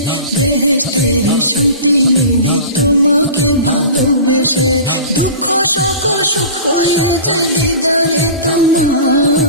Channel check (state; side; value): inverted; both; correlation -0.37